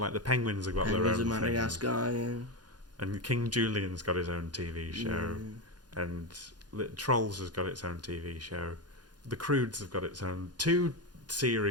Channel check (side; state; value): left; late; 0.70 ms